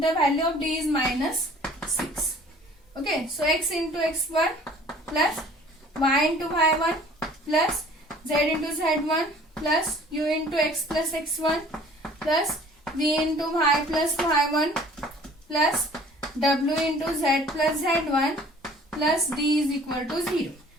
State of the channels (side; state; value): both; normal; correlation 0.51